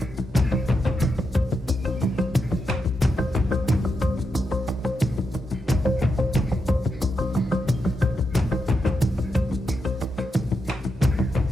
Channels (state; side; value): normal; both; correlation 0.85